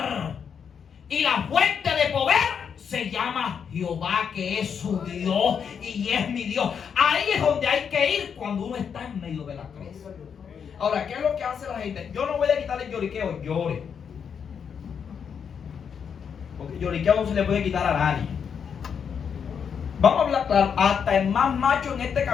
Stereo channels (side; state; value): right; quieter; 7.1 dB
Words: Y la fuente de poder se llama Jehová, que es su Dios y es mi Dios. Ahí es donde hay que ir cuando uno está en medio de la crisis. Ahora, ¿qué es lo que hace la gente? Yo no voy a quitarle el lloriqueo, llore. Porque el lloriqueo no se le puede quitar a nadie. Vamos a hablar claro, hasta el más macho en este